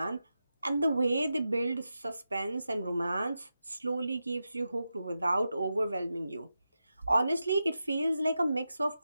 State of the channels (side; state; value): both; inverted; correlation -0.90